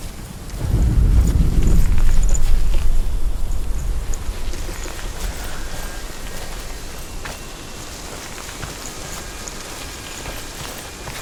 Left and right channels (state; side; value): identical; both; correlation 1.00